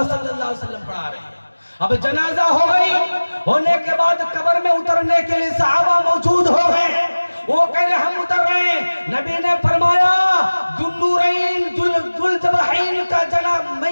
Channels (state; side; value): inverted; both; correlation -1.00